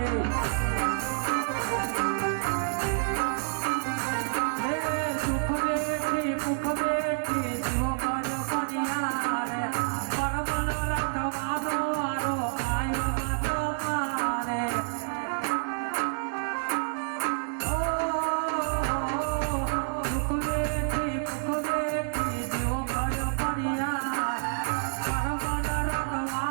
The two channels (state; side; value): silent; left; 59 dB below the other